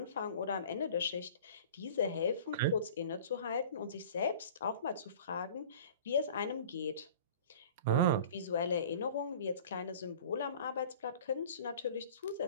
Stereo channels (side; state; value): both; inverted; correlation -0.44